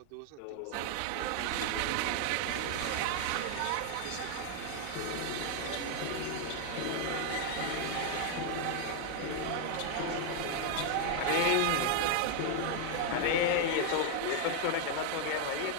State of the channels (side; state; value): both; different; correlation 0.00